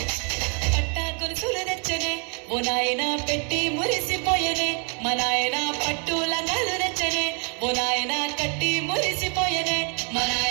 పట్టా గొలుసులు తెచ్చనే ఓ నాయన పెట్టి మురిసిపోయనే మా నాయన పట్టు లంగాలు తెచ్చనే ఓ నాయన కట్టి మురిసిపోయనే మా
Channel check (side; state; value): left; quieter; 38.1 dB